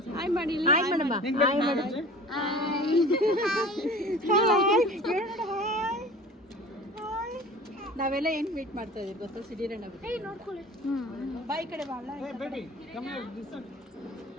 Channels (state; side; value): normal; both; correlation 0.41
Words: ಹಾಯ್ ಮಾಡಿ. ಹಾಯ್ ಮಾಡಮ್ಮ. ಹಾಯ್ ಮಾಡು. ನಾವೆಲ್ಲ ಏನು ಮೀಟ್ ಮಾಡ್ತಾ ಇದೀವಿ ಗೊತ್ತಾ? ಸಿಡಿರಣ್ಣ ನೋಡ್ಕೊಳ್ಳಿ. ಬಾಯಿ ಕಡೆ ಬಾಳ